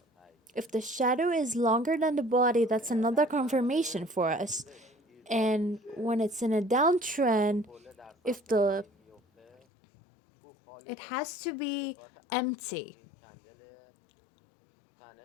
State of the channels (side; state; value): right; drops out; at 9.6 s